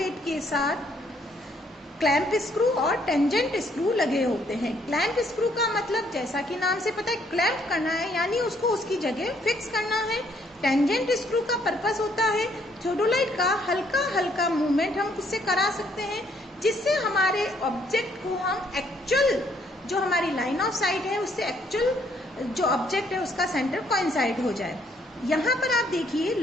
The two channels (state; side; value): normal; both; correlation 0.68